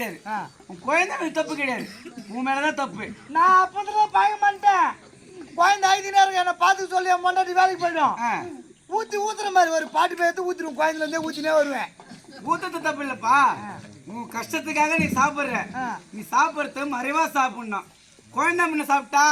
உன் குழந்தை மேல தப்பு கிடையாது, உன் மேலதான் தப்பு. நான் அப்பதான் பய மாட்டேன். குழந்தை 5 நேரம் என்ன பார்த்து சொல்லி என் மண்டாட்டி வேலைக்கு போயிடும். ஊத்துற மாதிரி ஒரு பாட்டு பேத்து ஊத்திரும், குழந்தைல இருந்தே ஊத்தினே வருவேன். ஊத்தது தப்பு இல்லப்பா, உன் கஷ்டத்துக்காக நீ சாப்பிடுற, நீ சாப்பிடுறது மறைவா சாப்பிடணும். குழந்தை முன்ன சாப்பிட்டா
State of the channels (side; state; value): both; identical; correlation 1.00